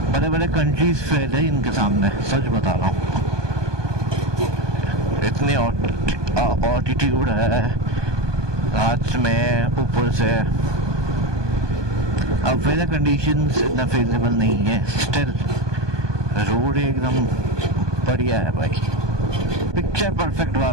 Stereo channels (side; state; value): left; late; 1.2 ms